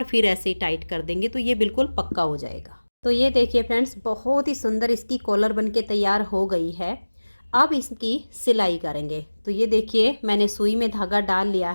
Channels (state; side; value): inverted; both; correlation -1.00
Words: फिर ऐसे ही टाइट कर देंगे तो ये बिल्कुल पक्का हो जाएगा। तो ये देखिए फ्रेंड्स, बहुत ही सुंदर इसकी कॉलर बनके तैयार हो गई है। अब इसकी सिलाई करेंगे। तो ये देखिए, मैंने सुई में धागा डाल लिया